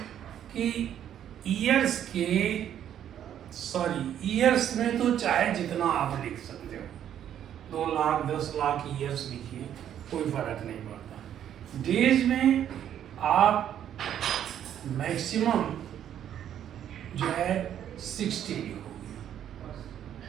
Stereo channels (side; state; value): left; quieter; 10.2 dB